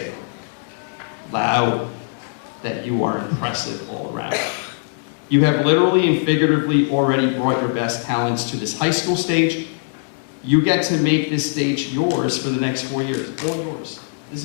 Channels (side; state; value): right; silent; digital silence